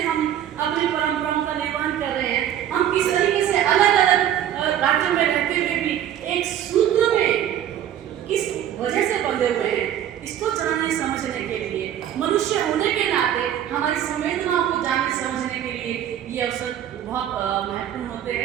हम अपनी परंपराओं का निर्वहन कर रहे हैं, हम किस तरीके से अलग अलग राज्यों में रहते हुए भी एक सूत्र में किस वजह से बंधे हुए हैं, इसको जानने समझने के लिए, मनुष्य होने के नाते हमारी संवेदनाओं को जानने समझने के लिए ये अवसर बहुत महत्वपूर्ण होते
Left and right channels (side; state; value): left; quieter; 10.7 dB